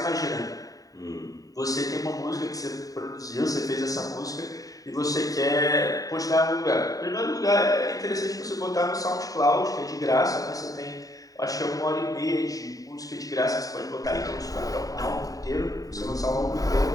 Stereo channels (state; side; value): late; right; 0.17 ms